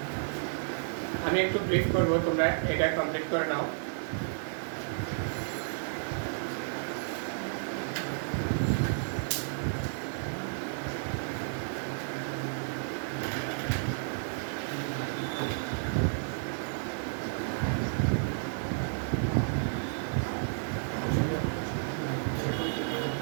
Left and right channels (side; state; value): left; silent; digital silence